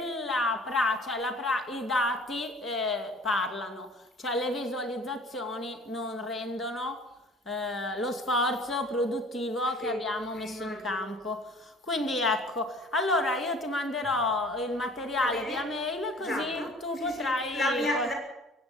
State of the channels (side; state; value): both; normal; correlation 0.48